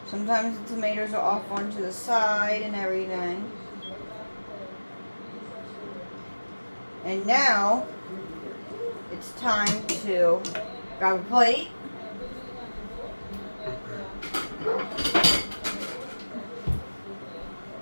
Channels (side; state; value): both; inverted; correlation -1.00